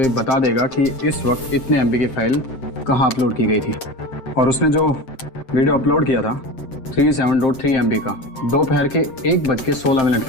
बता देगा कि इस वक्त इतने MB की फाइल कहाँ अपलोड की गई थी, और उसने जो वीडियो अपलोड किया था 37.3 MB का दोपहर के 1:16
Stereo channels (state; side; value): late; right; 7.6 ms